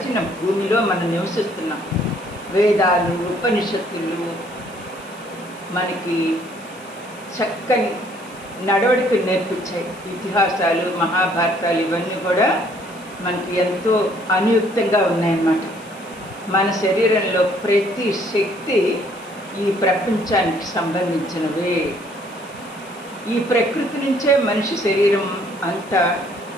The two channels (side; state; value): left; noise; hiss, 23 dB below the sound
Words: భూమిలో మనం నివసిస్తున్నాం. వేదాలు, ఉపనిషత్తులు మనకి చక్కని నడవడిక నేర్పించాయి. ఇతిహాసాలు, మహాభారతాలు ఇవన్నీ కూడా మనకి ఎంతో అనుయుక్తంగా ఉన్నాయన్నమాట. మన శరీరంలో ప్రతి శక్తి ఈ ప్రపంచానికి సంబంధించినవే. ఈ ప్రకృతి నుంచే మనిషి శరీరం అంతా